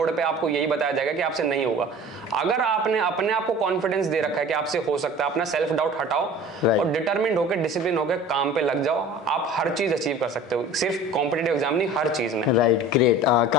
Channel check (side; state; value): both; normal; correlation 0.42